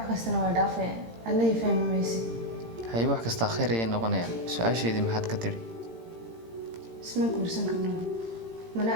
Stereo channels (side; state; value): left; late; 18 ms